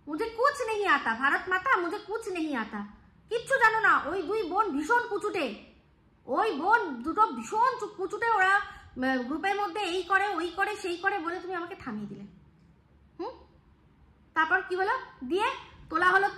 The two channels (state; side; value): identical; both; correlation 1.00